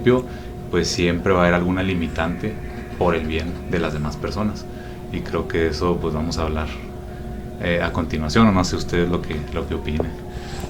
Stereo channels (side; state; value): both; identical; correlation 1.00